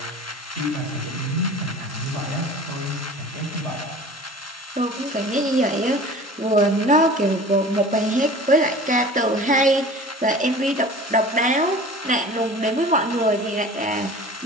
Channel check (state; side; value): normal; both; correlation 0.41